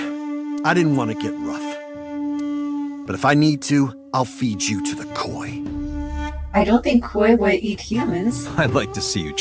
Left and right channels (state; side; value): identical; both; correlation 1.00